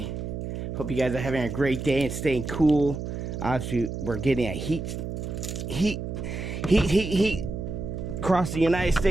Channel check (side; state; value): right; noise; hum, 5 dB below the sound